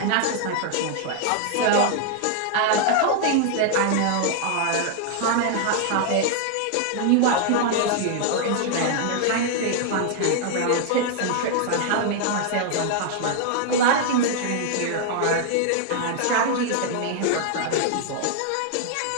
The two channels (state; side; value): different; both; correlation 0.00